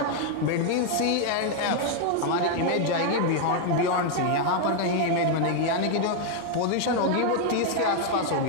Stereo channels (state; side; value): different; both; correlation 0.00